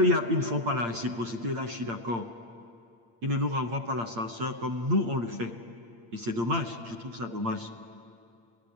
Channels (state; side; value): late; left; 8.7 ms